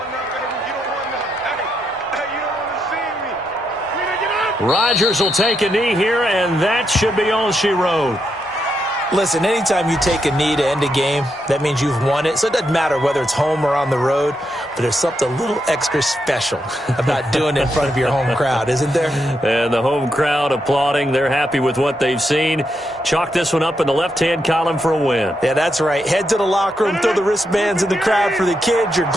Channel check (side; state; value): both; normal; correlation 0.82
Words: Rodgers will take a knee here, and that should be all she wrote. Listen, anytime you take a knee to end a game, that means you've won it. So it doesn't matter whether it's home or on the road, but there's something a little extra special about doing it in front of your home crowd, isn't there? And the home crowd applauding. They're happy with what they've seen. Chalk this one up in the left-hand column for a win. Yeah, that's right. Head to the locker room, throw the wristbands in the crowd for the kids, your